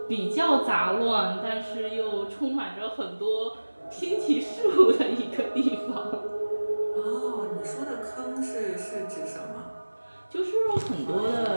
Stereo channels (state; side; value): inverted; both; correlation -1.00